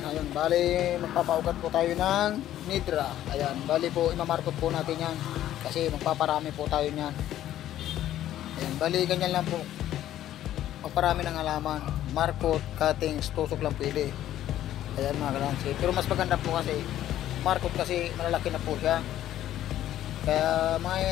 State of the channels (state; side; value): quieter; right; 12.5 dB